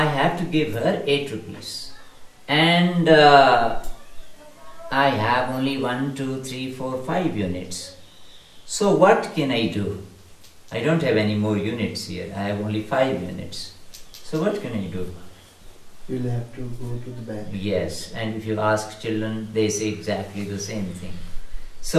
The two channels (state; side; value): identical; both; correlation 1.00